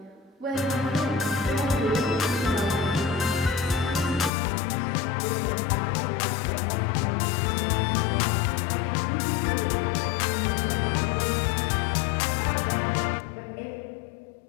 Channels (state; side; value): drops out; right; at 4.3 s